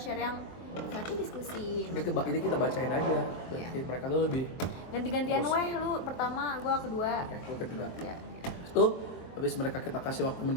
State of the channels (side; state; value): right; late; 23 ms